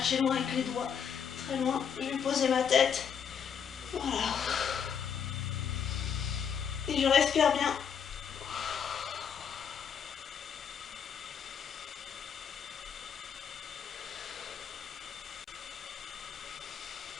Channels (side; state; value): right; quieter; 7.5 dB